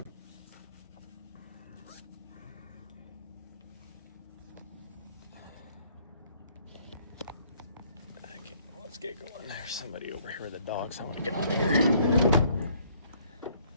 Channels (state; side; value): inverted; both; correlation -0.62